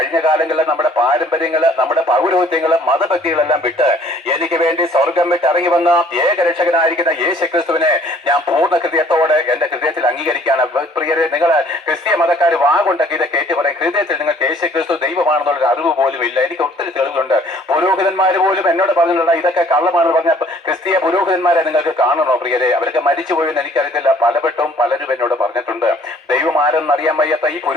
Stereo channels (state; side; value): normal; both; correlation 0.57